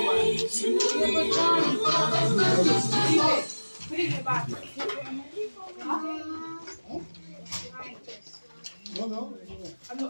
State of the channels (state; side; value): inverted; both; correlation -1.00